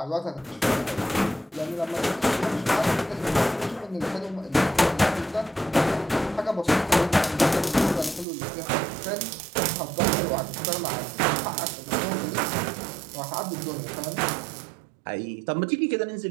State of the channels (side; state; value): left; drops out; at 8.2 s